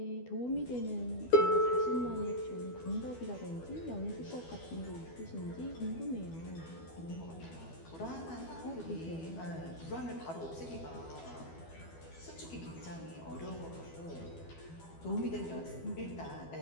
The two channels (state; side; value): late; right; 12 ms